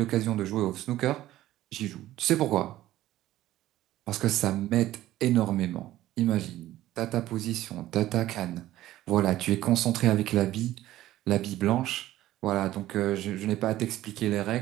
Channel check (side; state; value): left; quieter; 14.7 dB